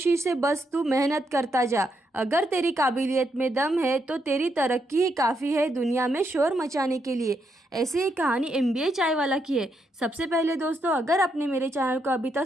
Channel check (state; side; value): normal; both; correlation 0.79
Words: से बस तू मेहनत करता जा। अगर तेरी काबिलियत में दम है तो तेरी तरक्की ही काफ़ी है दुनिया में शोर मचाने के लिए। ऐसी ही कहानी एमबीए चाय वाला की है। सबसे पहले दोस्तों, अगर आपने मेरे चैनल को अभी तक